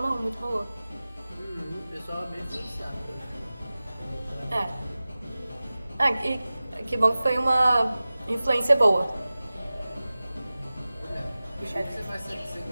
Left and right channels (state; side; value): inverted; both; correlation -0.97